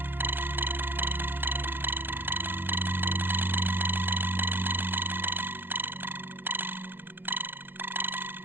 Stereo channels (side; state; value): left; late; 0.10 ms